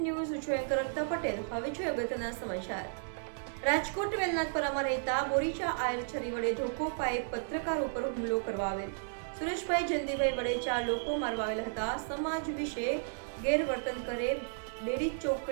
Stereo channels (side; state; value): left; silent; 55 dB below the other